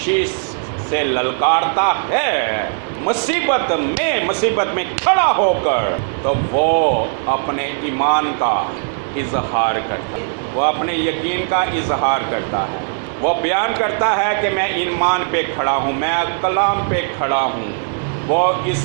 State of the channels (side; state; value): left; silent; 56 dB below the other